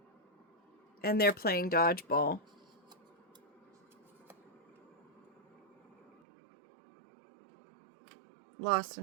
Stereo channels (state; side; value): drops out; left; at 6.2 s